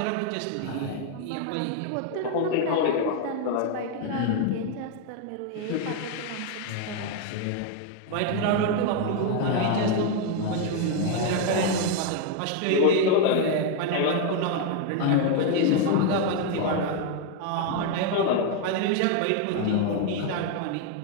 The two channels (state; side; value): different; both; correlation 0.01